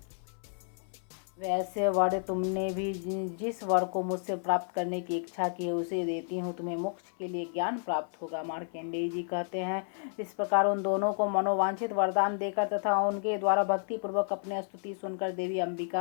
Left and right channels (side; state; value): right; silent; 57 dB below the other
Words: वैसे वर तुमने भी जिस वर को मुझसे प्राप्त करने की इच्छा की है उसे देती हूँ, तुम्हें मोक्ष के लिए ज्ञान प्राप्त होगा। मार्कंडेय जी कहते हैं, इस प्रकार उन दोनों को मनोवांछित वरदान देकर तथा उनके द्वारा भक्ति पूर्वक अपने स्तुति सुनकर देवी